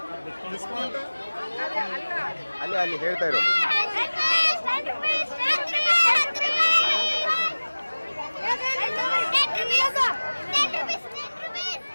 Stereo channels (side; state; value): both; inverted; correlation -1.00